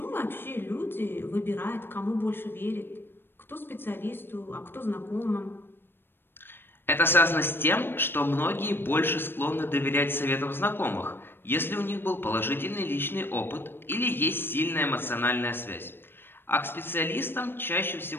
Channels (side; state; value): right; late; 0.10 ms